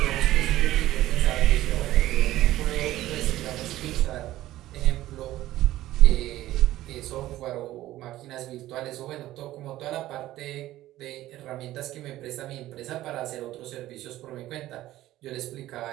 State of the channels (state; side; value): quieter; left; 15.1 dB